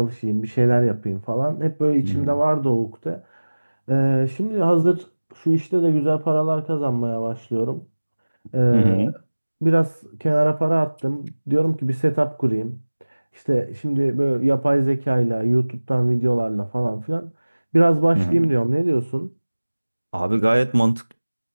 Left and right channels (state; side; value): inverted; both; correlation -1.00